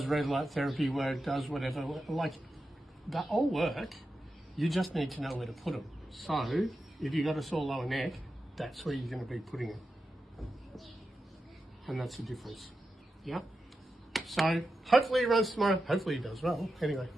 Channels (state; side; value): normal; both; correlation 0.90